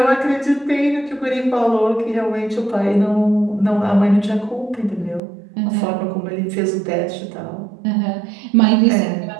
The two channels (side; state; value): left; drops out; at 5.2 s